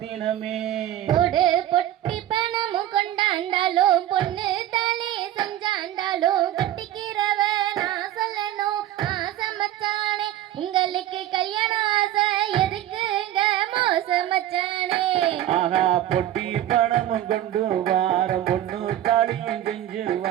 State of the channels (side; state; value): left; quieter; 12.7 dB